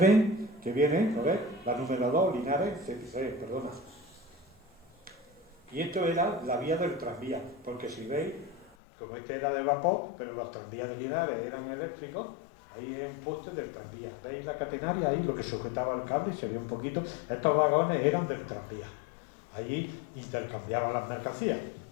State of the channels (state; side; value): drops out; right; at 8.8 s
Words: que viene, ¿no ves? La número 2, Linares, perdona. Y esto era la vía del tranvía, porque si veis, como este era de vapor, pero los tranvías de Linares eran eléctricos, ahí es un poste del tranvía. ¿Veis la catenaria ahí, lo que sujetaba el cable? Se ve un poquito. Estos vagones eran del tranvía. Allí intercambiaban las mercancías.